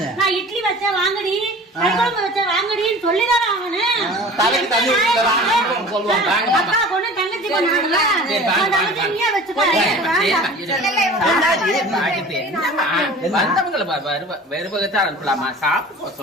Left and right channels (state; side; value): normal; both; correlation 0.41